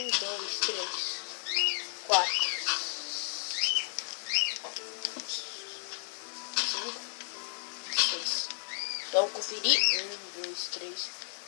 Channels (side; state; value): right; silent; digital silence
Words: 2, 3, 4. 6. Vamos conferir. 1, 2, 3,